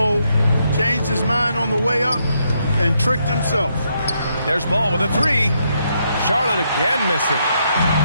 Changed his mind on the way up and tricked himself. There's Ball with a 3. Charlotte again missing.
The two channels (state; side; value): inverted; both; correlation -0.77